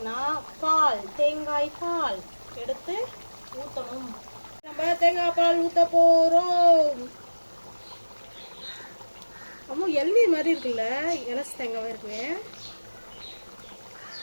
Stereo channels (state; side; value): inverted; both; correlation -1.00